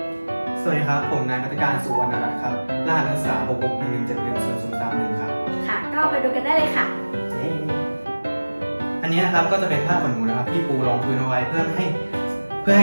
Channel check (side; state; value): both; inverted; correlation -1.00